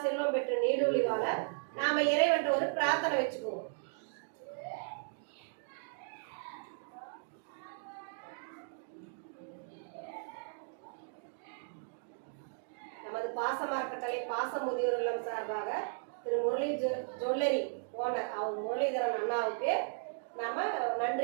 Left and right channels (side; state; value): left; silent; digital silence